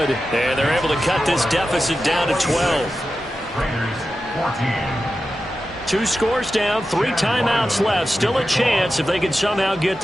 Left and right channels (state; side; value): normal; both; correlation 0.92